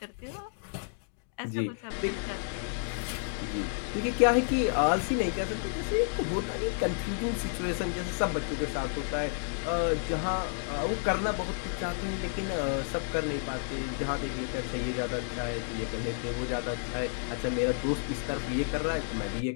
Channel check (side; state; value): right; silent; digital silence